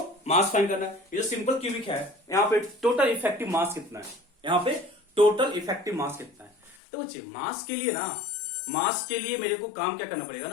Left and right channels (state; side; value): drops out; right; at 6.8 s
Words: मास फाइंड करना है। ये जो सिंपल क्यूबिक है यहाँ पे टोटल इफेक्टिव मास कितना है, यहाँ पे टोटल इफेक्टिव मास कितना है। तो बच्चे मास के लिए ना, मास के लिए मेरे को काम क्या करना पड़ेगा